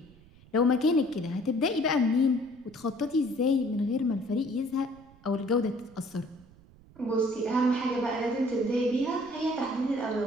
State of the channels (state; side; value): noise; right; rumble, 25 dB below the sound